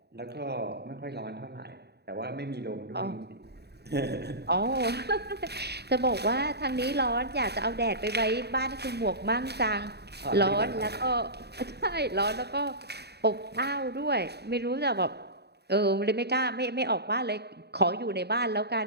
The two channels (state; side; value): late; left; 0.48 ms